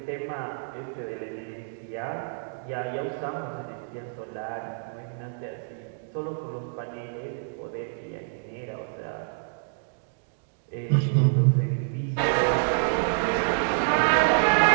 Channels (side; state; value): left; silent; digital silence